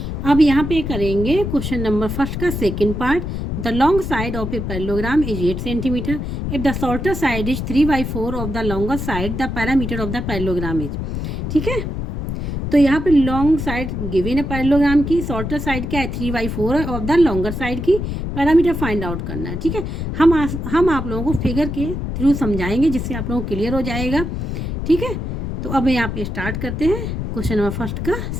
अब यहाँ पे करेंगे क्वेश्चन नंबर फर्स्ट का second part. The long side of a parallelogram is 8 centimetre if the shorter side is 3/4 of the longer side, the parameter of the parallelogram is. ठीक है, तो यहाँ पे लॉन्ग साइड गिवन है parallelogram की, shorter side क्या है 3/4 of the longer side की, पैरामीटर फाइंड आउट करना है। ठीक है, हम आप लोगों को फिगर के थ्रू समझाएंगे जिससे आप लोगों को क्लियर हो जाएगा। ठीक है, तो अब यहाँ पे स्टार्ट करते हैं क्वेश्चन नंबर फर्स्ट का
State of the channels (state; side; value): noise; left; rumble, 4 dB below the sound